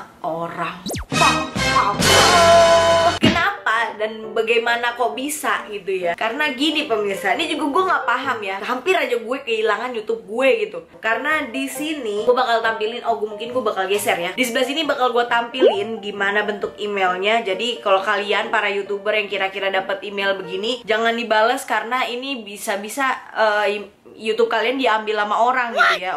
orang. Kenapa dan bagaimana kok bisa gitu ya? Karena gini pemirsa, ini juga gue nggak paham ya. Hampir aja gue kehilangan YouTube gue gitu. Karena di sini gue bakal tampilin, mungkin gue bakal geser ya. Di sebelah sini bakal gue tampilin gimana bentuk emailnya. Jadi kalau kalian para YouTuber yang kira-kira dapat email begini, jangan dibales karena ini bisa-bisa YouTube kalian diambil sama orang gitu ya,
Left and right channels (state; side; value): identical; both; correlation 1.00